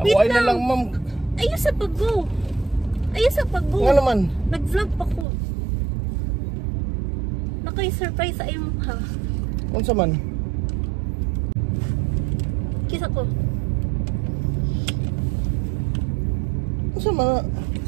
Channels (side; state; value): left; drops out; at 5.2 s